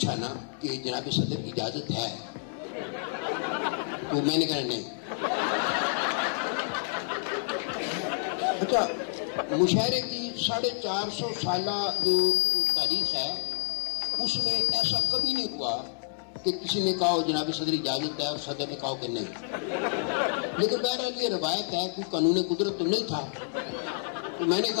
نا کہ جناب صدر اجازت ہے، تو میں نے کہا نہیں. اچھا مشاعرے کی 450 سالہ جو تاریخ ہے اس میں ایسا کبھی نہیں ہوا کہ کسی نے کہا جناب صدر اجازت ہے اور صدر نے کہا کہ نہیں. لیکن بہرحال یہ روایت ہے، کوئی قانون قدرت تو نہیں تھا. تو میں نے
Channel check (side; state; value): right; silent; digital silence